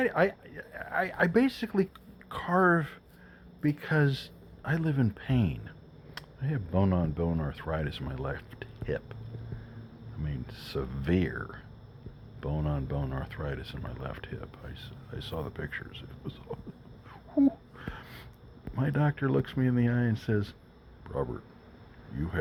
basically carve because I live in pain. I have bone-on-bone arthritis in my left hip. I mean, severe bone-on-bone arthritis in my left hip. I saw the pictures. It was, whew. My doctor looks me in the eye and says, Robert, you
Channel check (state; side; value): identical; both; correlation 1.00